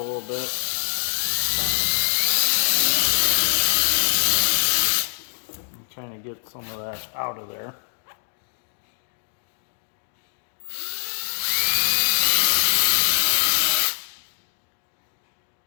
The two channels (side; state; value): right; silent; digital silence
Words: bit. And kind of get some of that out of there.